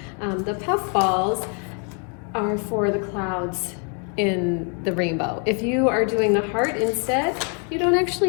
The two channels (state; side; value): quieter; right; 39.3 dB